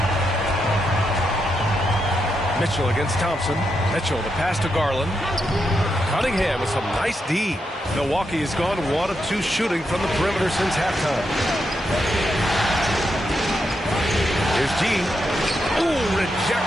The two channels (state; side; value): normal; both; correlation 0.83